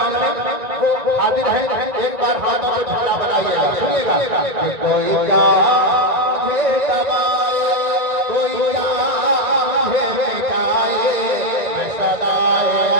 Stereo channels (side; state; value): left; late; 1.9 ms